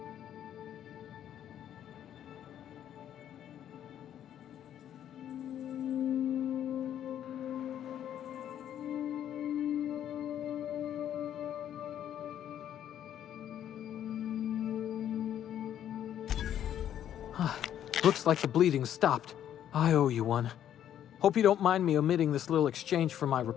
Looks like the bleeding's stopped. I owe you one. Hope you don't mind me omitting this little exchange from my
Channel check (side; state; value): right; quieter; 10.5 dB